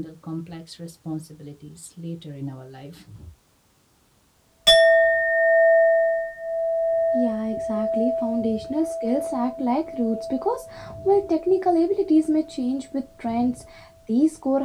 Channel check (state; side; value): identical; both; correlation 1.00